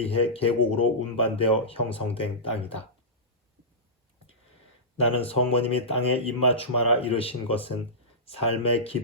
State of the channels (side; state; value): both; normal; correlation -0.17